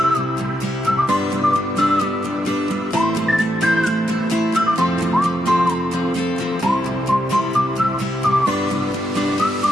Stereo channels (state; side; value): normal; both; correlation 0.81